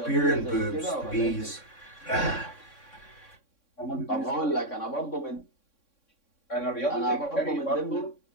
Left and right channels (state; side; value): late; right; 3.6 ms